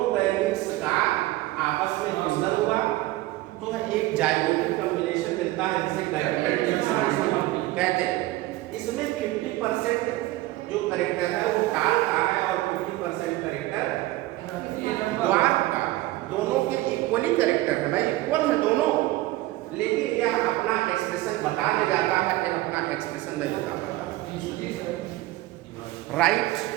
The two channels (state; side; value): quieter; left; 17.7 dB